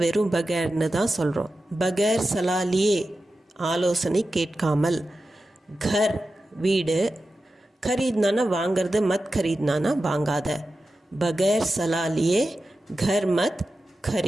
வெறும் பகேர்னு தான் சொல்கிறோம். பகேர் சலா லியே ஆலோசனை கேட்காமல். கர் வீடு, खरीदना வாங்கிறது, மத் खरीदना வாங்காத. பகேர் சலா லியே கர் மத்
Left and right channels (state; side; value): normal; both; correlation 0.92